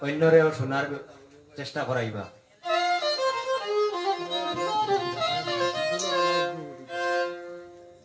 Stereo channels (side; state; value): both; identical; correlation 1.00